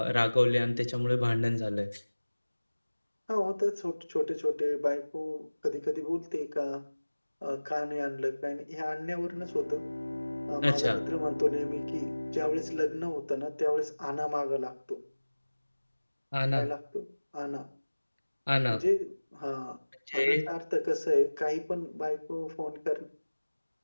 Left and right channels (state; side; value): inverted; both; correlation -1.00